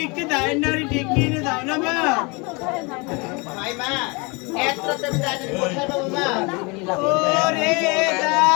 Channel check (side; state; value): right; quieter; 28.7 dB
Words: একটু দায়ের নাড়ি ডেকে এনে দাও না মা। ভাই মা এত রাতে আমি ডাকলে কোথায় পাবো মা? ওরে